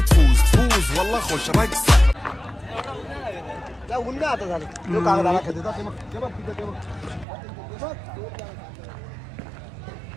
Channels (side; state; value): left; drops out; at 7.2 s